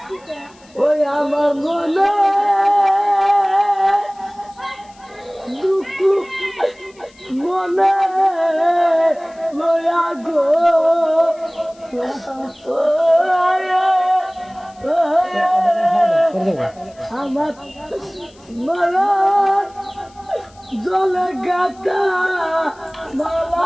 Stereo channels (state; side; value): noise; left; hiss, 29 dB below the sound